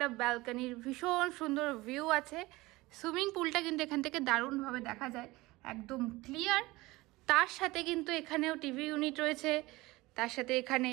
ব্যালকনির ভীষণ সুন্দর ভিউ আছে। সুইমিং পুলটা কিন্তু এখান থেকে দারুণভাবে দেখা যায়, একদম ক্লিয়ার। তার সাথে কিন্তু এখানেও টিভি ইউনিট রয়েছে, তার সাথে এখানে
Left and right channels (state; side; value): quieter; left; 20.5 dB